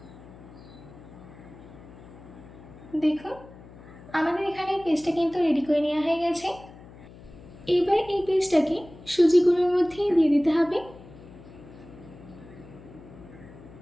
দেখুন আমাদের এখানে পেস্টটা কিন্তু রেডি করে নেওয়া হয়ে গেছে। এবার এই পেস্টটাকে সুজি গুঁড়োর মধ্যে দিয়ে দিতে হবে।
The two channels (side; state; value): left; noise; hum, 19 dB below the sound